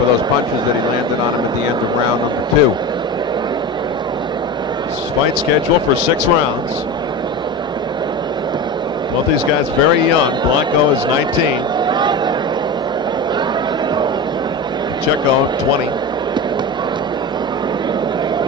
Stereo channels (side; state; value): both; normal; correlation 0.25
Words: those punches that he landed on him at the end of round number 2. This fight scheduled for 6 rounds. Both these guys very young. Blanco is 19. Pacheco, 20.